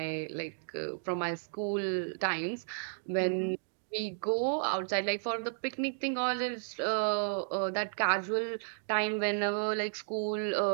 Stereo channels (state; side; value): silent; left; digital silence